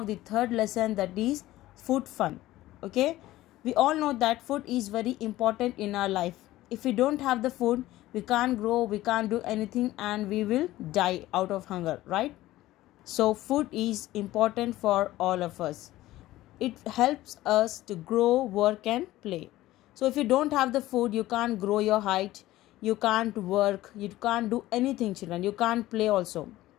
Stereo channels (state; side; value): quieter; right; 16.2 dB